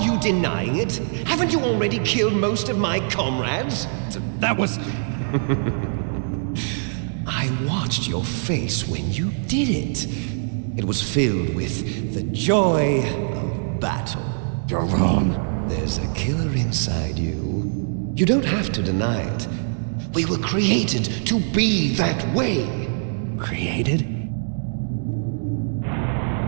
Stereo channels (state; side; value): silent; left; digital silence